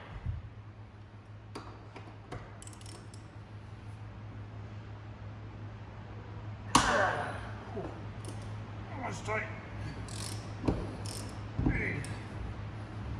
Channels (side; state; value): both; identical; correlation 1.00